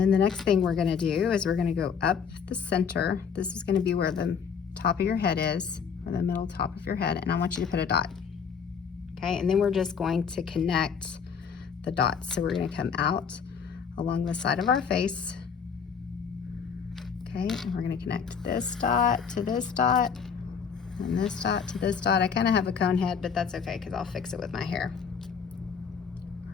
the next thing we're gonna do is we're gonna go up the center. This is gonna be where the top of your head is, or the middle top of your head, and I want you to put a dot. Okay, and then we're just going to connect the dots. So we're going to come out along the side of our face. Okay, and we're going to connect this dot to this dot, and this dot to this dot. I kind of have a cone head, but that's okay because I'll fix it with my hair.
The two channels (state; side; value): quieter; right; 6.6 dB